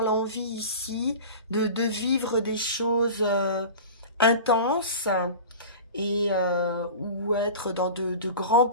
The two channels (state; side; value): inverted; both; correlation -0.34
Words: l'envie ici de vivre des choses intenses et ou être dans de grands